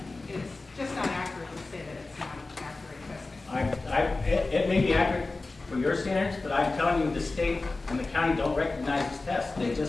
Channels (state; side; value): quieter; right; 3.4 dB